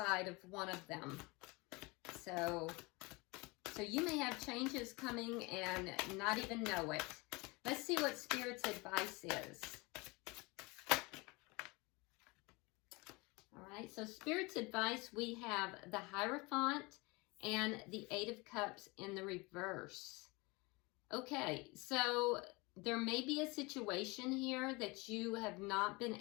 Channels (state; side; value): quieter; right; 25.7 dB